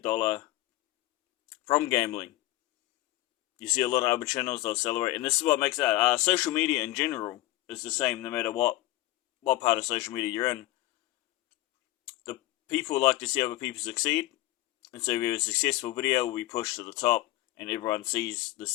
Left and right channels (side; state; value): right; quieter; 17.2 dB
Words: from gambling. You see a lot of other channels, they'll celebrate, and this is what makes that. Social media in general is the same no matter what part of social media you're in. The people like to see other people succeed, and so if we have a successful video, we push to the top, and everyone sees the